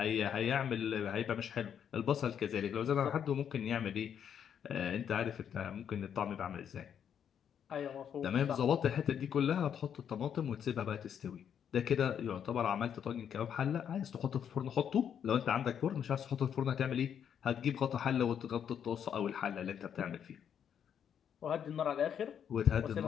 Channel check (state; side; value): quieter; right; 8.5 dB